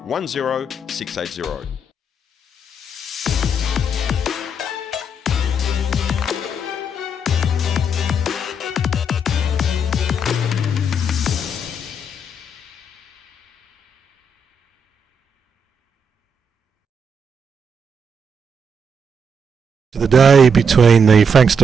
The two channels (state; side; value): normal; both; correlation 0.77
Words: 10680. The day between the